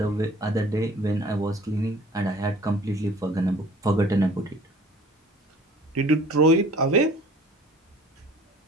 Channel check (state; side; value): normal; both; correlation 0.49